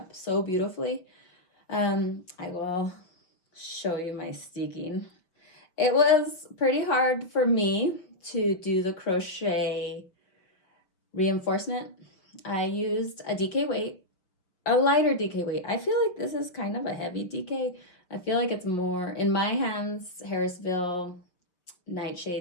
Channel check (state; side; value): late; right; 5.7 ms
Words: so beautifully. I will show you my steeking. It was pretty hard for me to do the crochet reinforcement. I used a DK weight, a lighter DK weight. I feel like this is kind of a heavy DK. I feel like it's more, in my hands, Harrisville